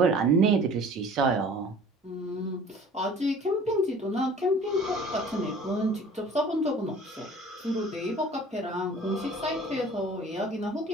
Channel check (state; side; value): normal; both; correlation 0.48